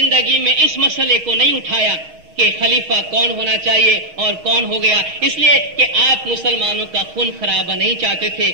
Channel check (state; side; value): late; left; 6.3 ms